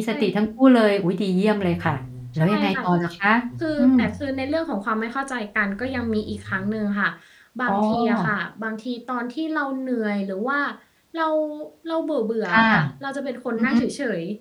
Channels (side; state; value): both; identical; correlation 1.00